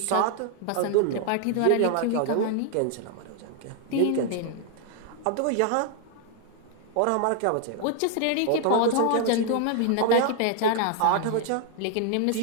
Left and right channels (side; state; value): both; different; correlation 0.00